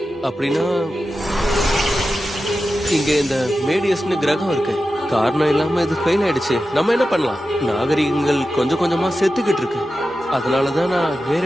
அப்படின்னா இங்க இந்த மேடியஸ்னு கிரகம் இருக்கு. காரணம் இல்லாம இது ஃபெயில் ஆயிடுச்சு. நம்ம என்ன பண்ணலாம்? நாகரிகங்கள் கொஞ்சம் கொஞ்சமா செத்துக்கிட்டு இருக்கு. அதனாலதான் நான்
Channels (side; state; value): both; normal; correlation 0.92